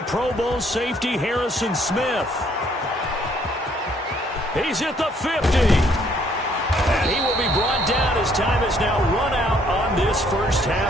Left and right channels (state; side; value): normal; both; correlation 0.65